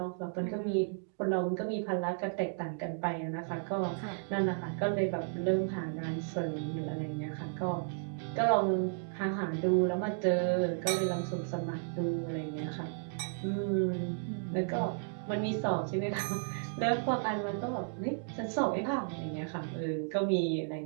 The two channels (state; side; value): silent; left; digital silence